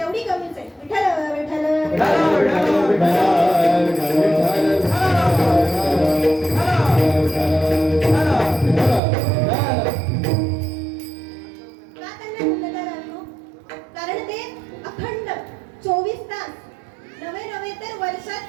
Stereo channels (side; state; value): left; drops out; at 9.0 s